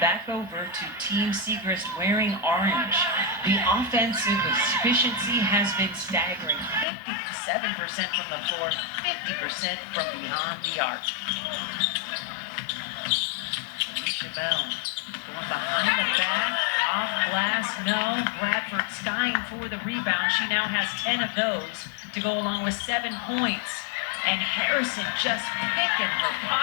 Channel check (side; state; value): right; drops out; at 6.9 s